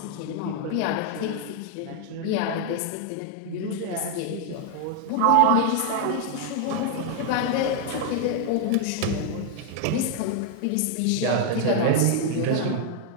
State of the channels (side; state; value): both; different; correlation 0.00